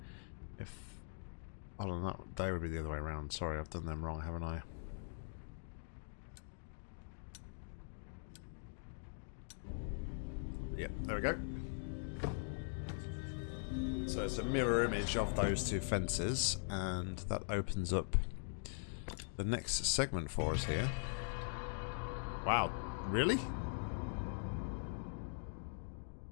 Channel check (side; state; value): right; silent; digital silence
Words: if... Oh, no, that they would be the other way around. Sorry, I've done them wrong, haven't I? Yep, there we go. So it's a mirror image of those two fences, and that opens up the next segment for us here. Wow, really?